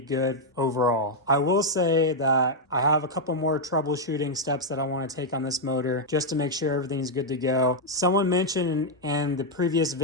good overall. I will say that I have a couple more troubleshooting steps that I want to take on this motor just to make sure everything's good to go. Someone mentioned in the previous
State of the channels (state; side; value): normal; both; correlation -0.01